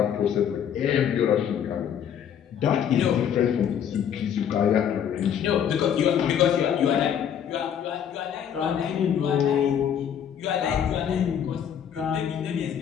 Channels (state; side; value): quieter; right; 8.8 dB